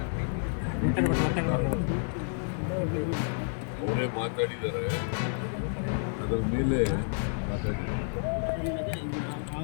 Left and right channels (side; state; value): right; silent; 58 dB below the other